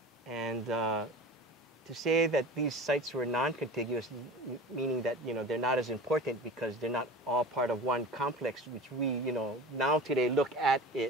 And to say that these sites were non-contiguous, meaning that, you know, they're not as important because they're not all part of one complex, which we, you know, now today look at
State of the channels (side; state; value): both; normal; correlation 0.36